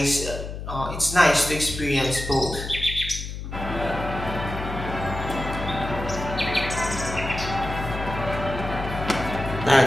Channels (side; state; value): left; noise; hum, 7 dB below the sound